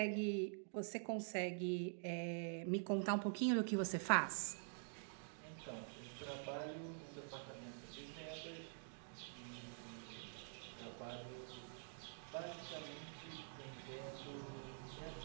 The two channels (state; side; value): silent; left; digital silence